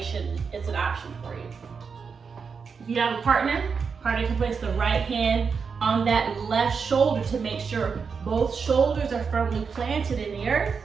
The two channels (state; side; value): quieter; left; 5.7 dB